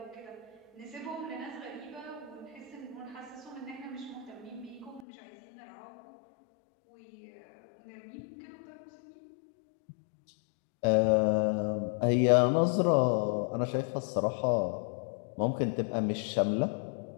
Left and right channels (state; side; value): drops out; right; at 5.1 s